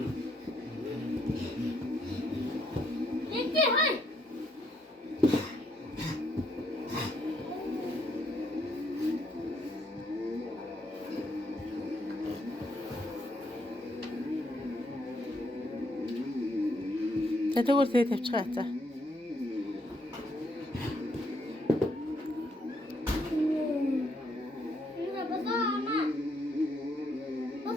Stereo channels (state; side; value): normal; both; correlation 0.73